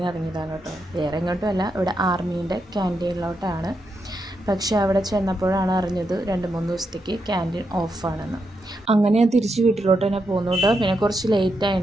ഇറങ്ങിയതാണ് കേട്ടോ. വേറെ എങ്ങോട്ടുമല്ല, ഇവിടെ ആർമീൻ്റെ ക്യാൻറ്റീനിലോട്ടാണ്. പക്ഷേ അവിടെ ചെന്നപ്പോഴാണ് അറിഞ്ഞത് 2-3 ദിവസത്തേക്ക് ക്യാൻറ്റീൻ ഓഫാണെന്ന്. അങ്ങനെ ഞാൻ തിരിച്ച് വീട്ടിലോട്ട് തന്നെ പോകുന്നു കേട്ടോ. പിന്നെ കുറച്ച് ലേറ്റ്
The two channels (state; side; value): normal; both; correlation 0.83